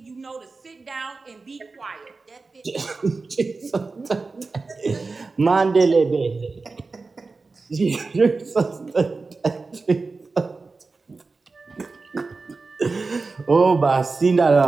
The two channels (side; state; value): left; quieter; 4.0 dB